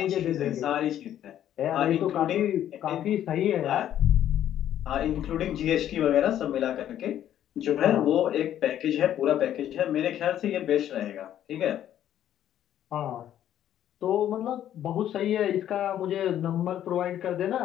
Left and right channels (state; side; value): quieter; right; 11.2 dB